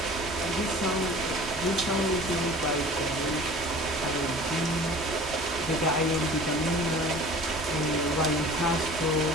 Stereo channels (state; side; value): normal; both; correlation 0.44